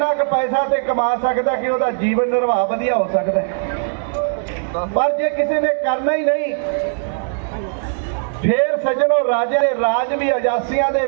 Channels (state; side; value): silent; left; 67 dB below the other